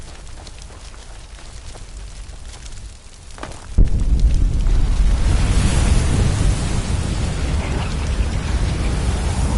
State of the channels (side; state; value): both; identical; correlation 1.00